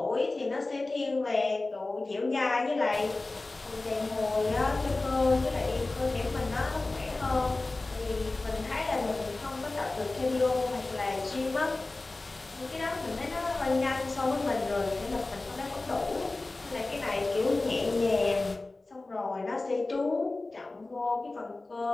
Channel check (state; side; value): quieter; right; 3.2 dB